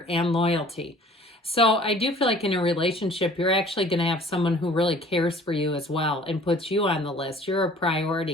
and loyalty. So I do feel like in a relationship, you're actually going to have someone who really cares for you as well and puts you on the list. You're a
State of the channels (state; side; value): normal; both; correlation 0.50